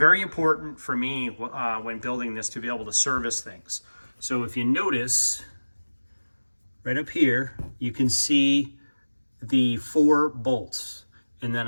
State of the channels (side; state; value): both; inverted; correlation -1.00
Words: important for me when building this to be able to service things. So if you notice, right up here, you can see the 4 bolts. And then